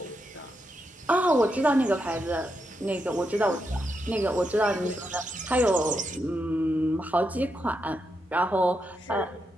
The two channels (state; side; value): normal; both; correlation 0.84